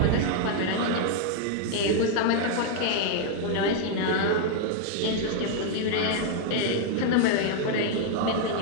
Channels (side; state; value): both; different; correlation 0.00